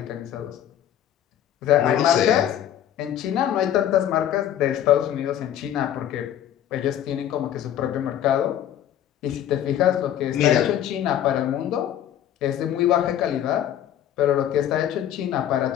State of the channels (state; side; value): quieter; right; 10.8 dB